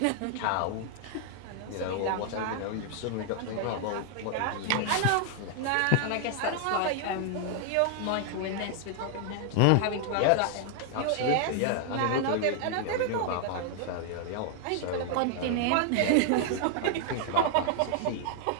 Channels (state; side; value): different; both; correlation 0.00